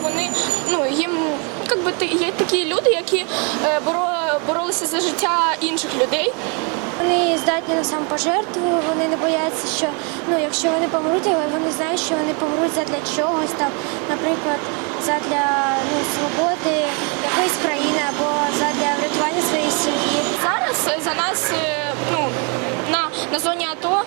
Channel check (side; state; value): left; quieter; 35.1 dB